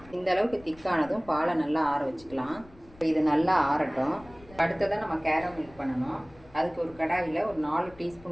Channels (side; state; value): left; noise; rumble, 23 dB below the sound